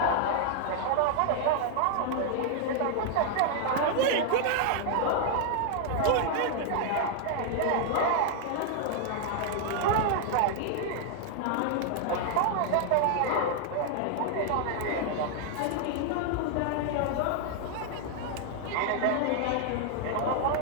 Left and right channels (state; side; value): different; both; correlation 0.00